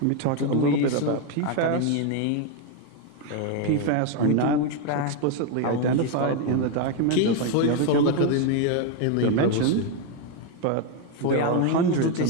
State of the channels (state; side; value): different; both; correlation 0.01